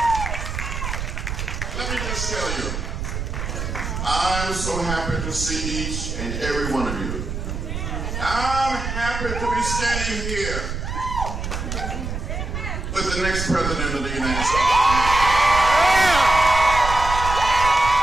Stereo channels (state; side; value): noise; right; rumble, 5 dB below the sound